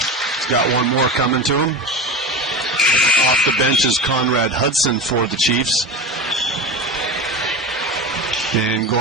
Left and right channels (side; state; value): both; normal; correlation 0.26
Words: got one more coming to him. Off the bench is Conrad Hudson for the Chiefs. And